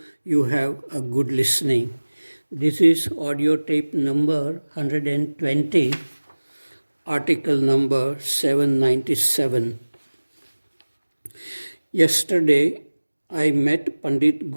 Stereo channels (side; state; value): both; inverted; correlation -1.00